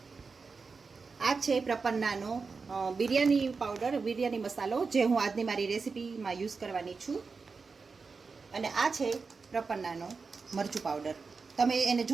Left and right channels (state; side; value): quieter; left; 4.7 dB